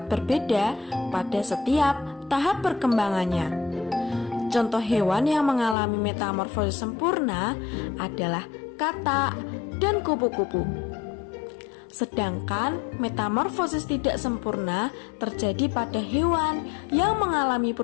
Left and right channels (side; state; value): right; drops out; at 5.8 s